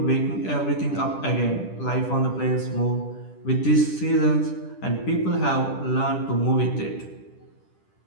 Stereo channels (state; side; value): late; right; 10 ms